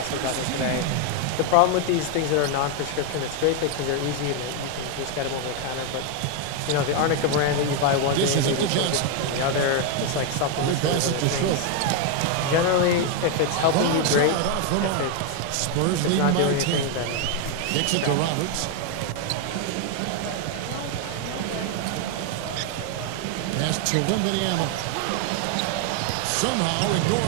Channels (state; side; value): different; both; correlation 0.01